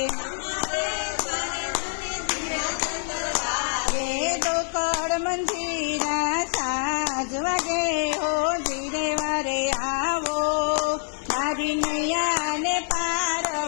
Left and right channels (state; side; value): silent; right; digital silence